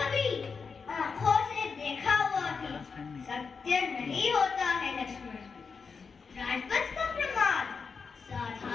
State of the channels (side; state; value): right; quieter; 5.3 dB